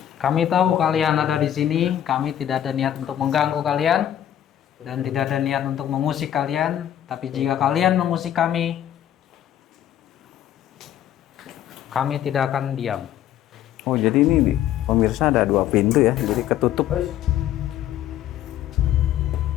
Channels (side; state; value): right; quieter; 11.2 dB